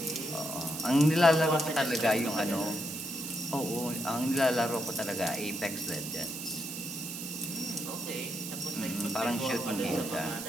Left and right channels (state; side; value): noise; right; hiss, 7 dB below the sound